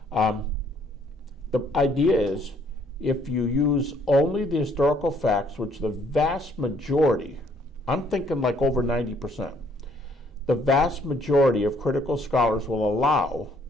The idea is, if you use only the historical facts, which the vast majority, I'm thinking like over 90%, the vast majority of critical scholars will allow,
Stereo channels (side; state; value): both; normal; correlation 0.64